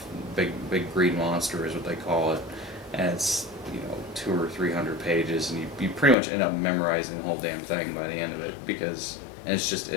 Big green monster is what they call it, and it's 200 or 300 pages, and you pretty much end up memorizing the whole damn thing by the end of it and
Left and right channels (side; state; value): right; drops out; at 6.2 s